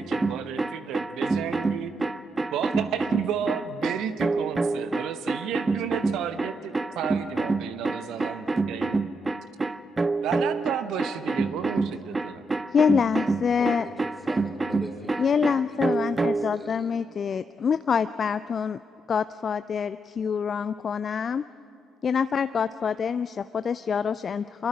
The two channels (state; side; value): normal; both; correlation 0.80